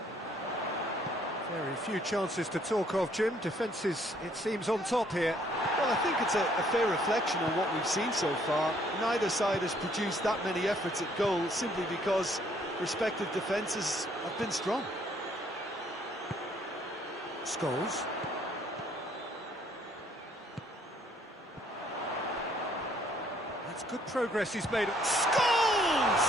Very few chances to talk of, Jim. Defence is, it seems, on top here. Well, I think it's a fair reflection on what we've seen so far. Neither side has produced that many efforts at goal simply because respective defences have been strong. Scholes. That's good progress he's made. Scholes!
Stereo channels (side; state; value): both; normal; correlation 0.64